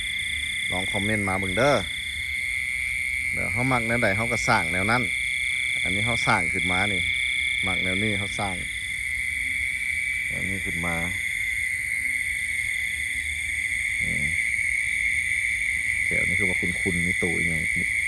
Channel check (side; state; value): both; identical; correlation 1.00